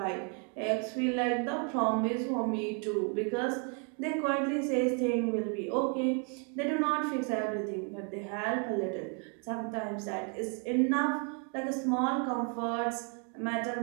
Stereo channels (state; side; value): quieter; left; 39.5 dB